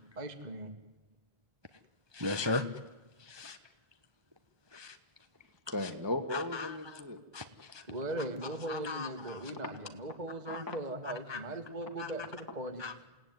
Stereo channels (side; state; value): left; late; 1.2 ms